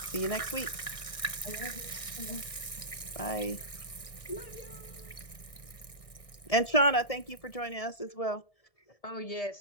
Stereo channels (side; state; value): right; late; 1.6 ms